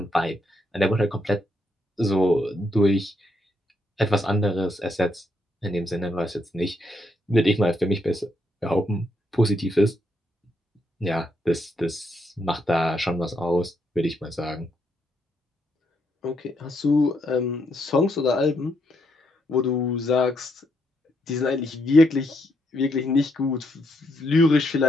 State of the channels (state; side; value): normal; both; correlation 0.77